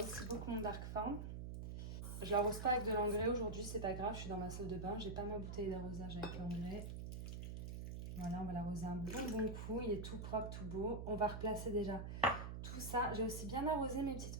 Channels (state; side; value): noise; right; hum, 5 dB below the sound